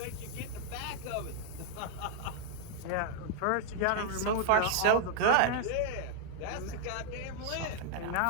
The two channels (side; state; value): both; different; correlation 0.00